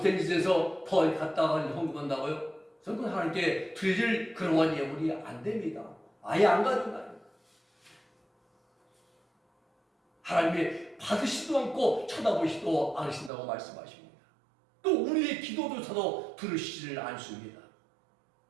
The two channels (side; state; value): left; drops out; at 13.3 s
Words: 짓에서 더 갖다가 헌금한다고요? 저는 하나님께 드릴 그러한 예물이 안 됩니다. 아예 안 가져가요. 하나님이 받으시지도 않고 쳐다보시지도 않으신다고 말씀하십니다. 또 우리의 기도조차도 들으시지를 않습니다.